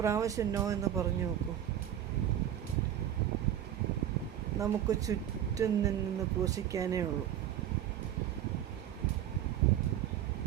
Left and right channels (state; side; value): quieter; left; 10.8 dB